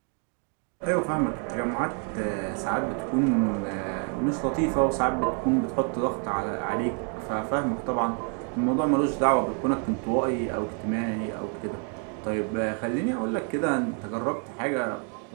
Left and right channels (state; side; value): quieter; left; 39.4 dB